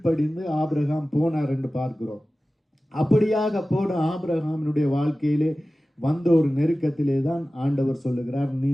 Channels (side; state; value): both; normal; correlation 0.96